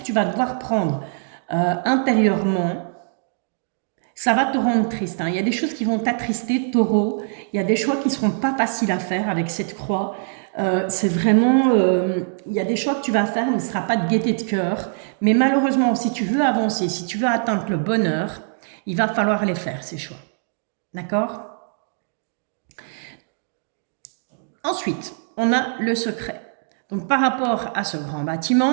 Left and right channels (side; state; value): left; silent; digital silence